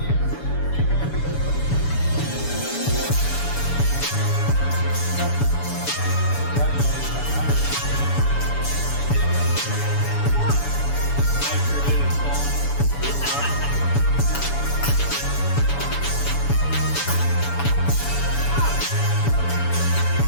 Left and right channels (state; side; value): late; right; 7.0 ms